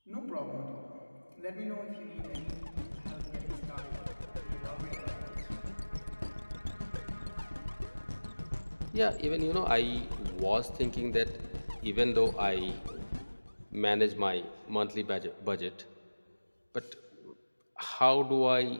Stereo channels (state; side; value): inverted; both; correlation -1.00